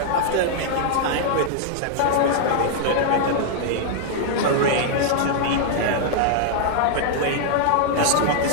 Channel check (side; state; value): both; different; correlation -0.01